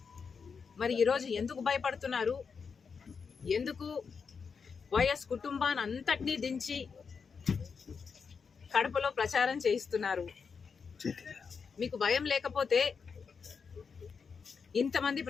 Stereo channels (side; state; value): right; quieter; 5.7 dB